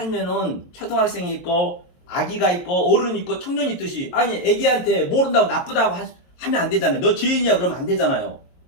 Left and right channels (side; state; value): right; late; 22 ms